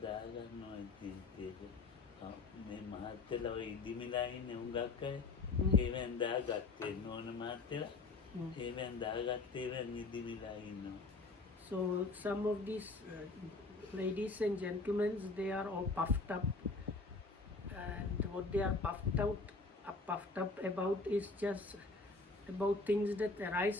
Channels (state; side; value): quieter; right; 3.7 dB